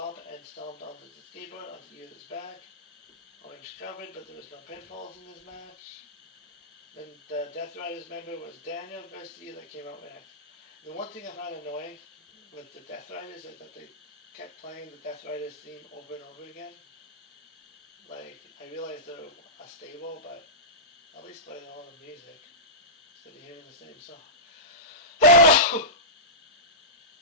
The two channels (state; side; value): normal; both; correlation -0.16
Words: and stomped onto the skateboard onto Yuta's back. Orange covered, but there was no pinfalls in this match. Then the Death Riders member was Daniel Garcia that came out next. The one thing I found annoying with the Death Riders is that they kept playing the Death Riders theme over and over again. Like, I realize they're a stable, but at least play their own music instead of hearing the same song